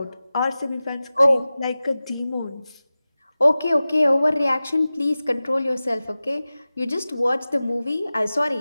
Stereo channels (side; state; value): both; inverted; correlation -0.96